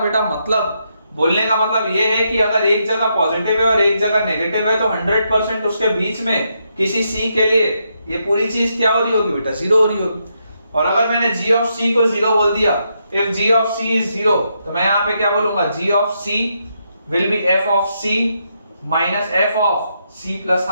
का मतलब ये है कि अगर एक जगह पॉजिटिव है और एक जगह नेगेटिव है तो 100% उसके बीच में किसी c के लिए ये पूरी चीज क्या हो रही होगी बेटा, 0 हो रही होगी। और अगर मैंने g of c को 0 बोल दिया, if g of c is 0 तो मैं यहाँ पे क्या बोलूंगा, g of c will be f of c minus f of c plus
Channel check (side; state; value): both; inverted; correlation -0.80